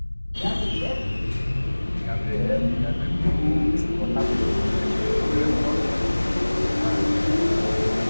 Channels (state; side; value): inverted; both; correlation -1.00